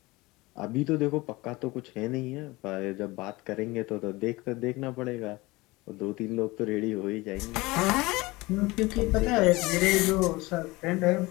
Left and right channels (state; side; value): quieter; right; 21.8 dB